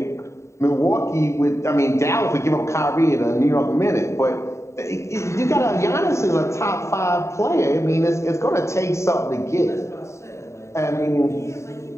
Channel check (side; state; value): right; late; 0.14 ms